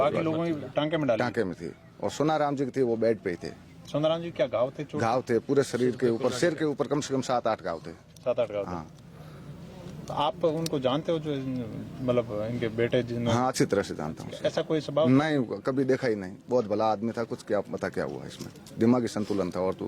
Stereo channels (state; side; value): identical; both; correlation 1.00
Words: लोगों ने टांके में डाली? टांके में थी, और सोनाराम जी की थी वो बेड पे ही थे। सोनाराम जी क्या घाव थे? घाव थे पूरे शरीर के ऊपर, सिर के ऊपर कम से कम 7-8 घाव थे। 7-8 घाव? हाँ। तो आप उनको जानते हो, जो मतलब इनके बेटे जिन्होंने? हाँ, अच्छी तरह से जानता हूँ। ऐसा कोई स्वभाव नहीं, कभी देखा ही नहीं, बहुत भला आदमी था। कुछ क्या पता क्या हुआ इसमें, दिमागी संतुलन था और तो